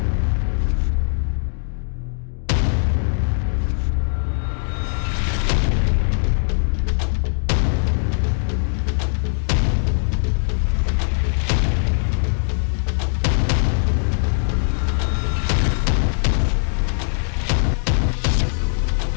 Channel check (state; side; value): silent; right; digital silence